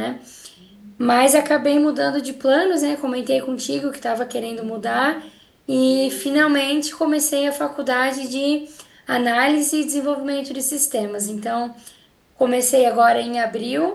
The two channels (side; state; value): both; identical; correlation 1.00